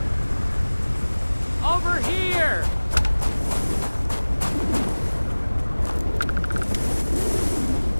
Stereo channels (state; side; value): inverted; both; correlation -1.00